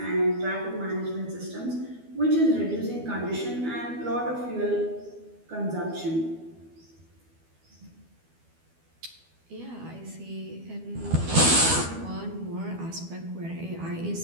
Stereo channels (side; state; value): left; late; 12 ms